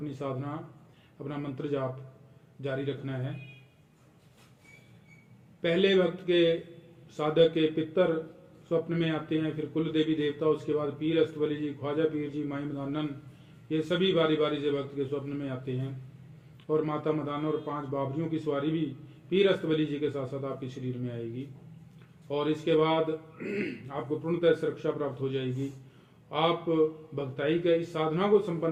साधना, अपना मंत्र जाप जारी रखना है। पहले वक्त के साधक के पितर स्वप्न में आते हैं, फिर कुल देवी देवता, उसके बाद पीर अस्तबली जी, ख्वाजा पीर जी, माई मदानन, ये सभी बारी बारी से भक्त के स्वप्न में आते हैं। और माता मदाना और 5 बाबरियों की सवारी भी पीर अस्तबली जी के साथ साथ आपके शरीर में आएगी और इसके बाद आपको पूर्णतः सुरक्षा प्राप्त हो जाएगी। आप भक्ताई का इस साधना को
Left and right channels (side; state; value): both; identical; correlation 1.00